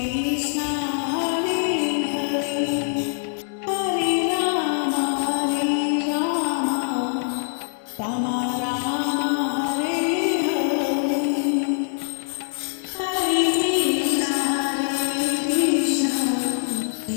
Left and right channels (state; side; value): silent; right; digital silence